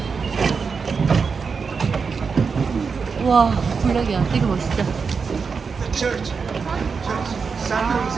와 블랙이야. 되게 멋있다.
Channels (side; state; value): left; quieter; 5.4 dB